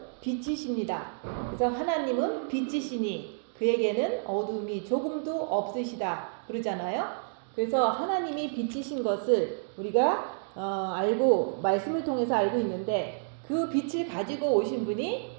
빛이십니다. 그래서 하나님은 빛이시니 그에게는 어둠이 조금도 없으시다 그러잖아요. 그래서 하나님이 빛이신 것을 우리가 말씀을 통해서 알고 있는데 그 빛을 가지고 오신 분이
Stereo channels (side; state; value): left; silent; digital silence